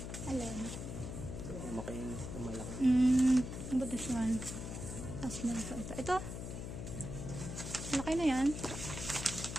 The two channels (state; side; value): noise; left; hum, 6 dB below the sound